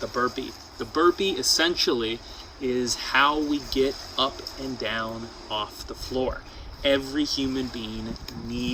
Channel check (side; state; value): both; identical; correlation 1.00